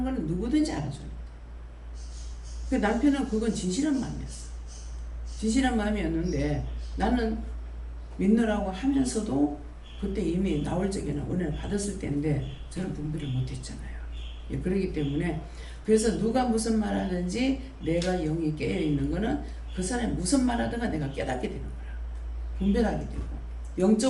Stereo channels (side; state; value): both; identical; correlation 1.00